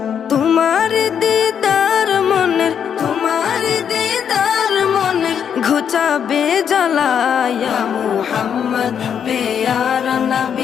তোমার দিদার মনের, তোমার দিদার মনের ঘুচাবে জ্বালা। ইয়া মুহাম্মদ পেয়ারা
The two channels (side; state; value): right; quieter; 8.0 dB